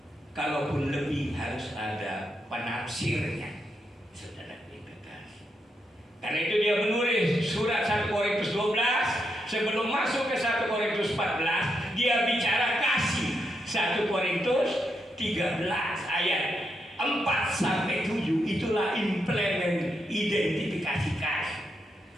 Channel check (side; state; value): both; normal; correlation 0.82